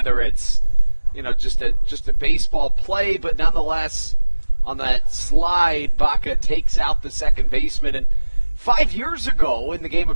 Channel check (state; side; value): inverted; both; correlation -1.00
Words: it's, just a baseball play, but nonetheless, on that slide, Baca takes out the second baseman. And 5 years ago in the game of